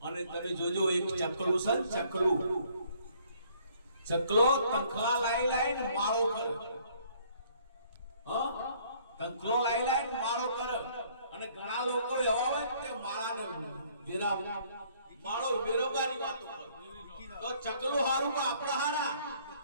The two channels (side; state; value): both; inverted; correlation -0.62